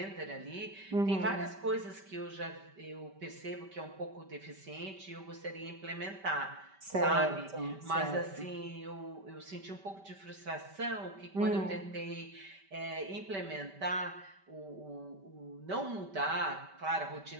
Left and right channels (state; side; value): late; left; 5.1 ms